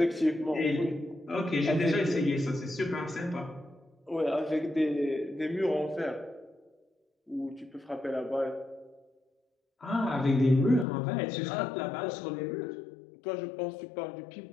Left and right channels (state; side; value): drops out; right; at 10.9 s